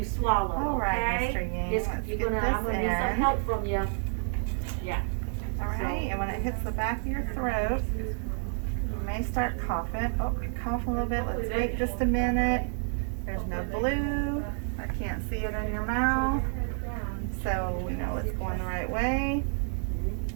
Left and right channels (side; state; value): left; silent; 58 dB below the other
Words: swallow. All right, okay? Mr. Yang, It's- let's you're get gonna, this I'm gonna need some in. help from you. Alright, and when it hits the back of your throat, you may start coughing. Oh, you cough a little bit. Let's wait just a minute. There's no blue. I can't see it in your mouth. So we know it's going the right way.